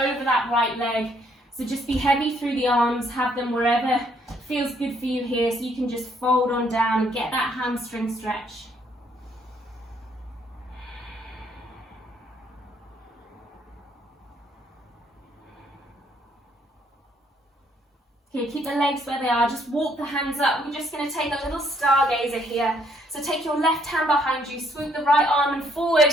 that right leg. So just be heavy through the arms, have them wherever feels good for you here, so you can just fold on down and get that hamstring stretch. Okay, keep the legs where they are, just walk the hands up. We're just going to take a little stargazer here. So take your left hand behind you, swoop the right arm and forward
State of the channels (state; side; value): normal; both; correlation 0.68